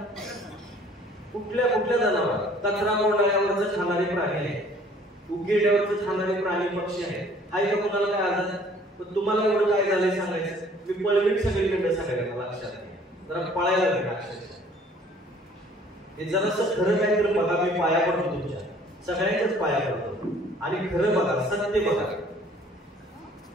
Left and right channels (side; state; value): both; normal; correlation 0.55